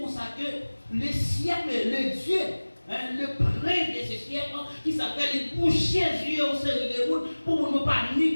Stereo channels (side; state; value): both; inverted; correlation -1.00